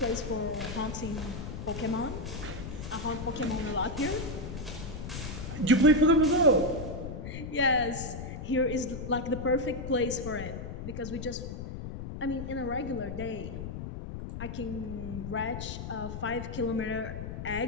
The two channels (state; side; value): noise; left; rumble, 7 dB below the sound